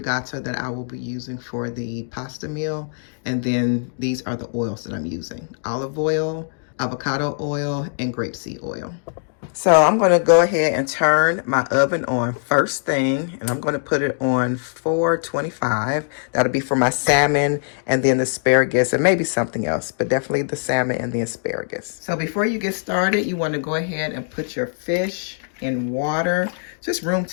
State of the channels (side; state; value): right; silent; 64 dB below the other